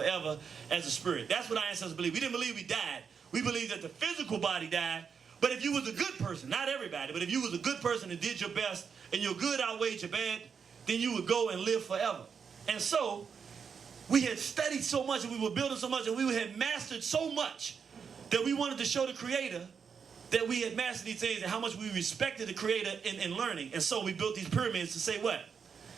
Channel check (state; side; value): quieter; left; 6.4 dB